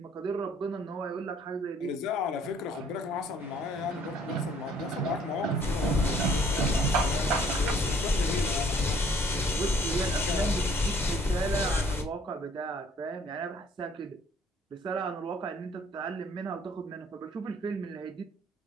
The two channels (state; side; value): normal; both; correlation 0.59